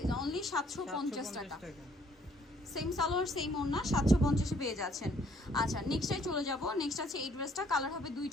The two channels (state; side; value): normal; both; correlation 0.63